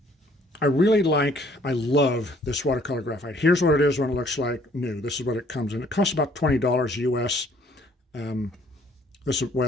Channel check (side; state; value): both; normal; correlation 0.61